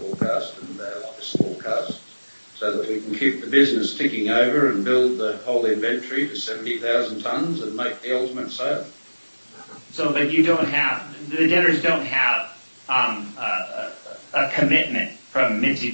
and our latest forecast so that we can keep the business ticking over and build the whole inventory to 70,000 tonnes and make the ultimate sale. So, but you don't have, the debtors don't have a commitment from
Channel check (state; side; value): inverted; both; correlation -1.00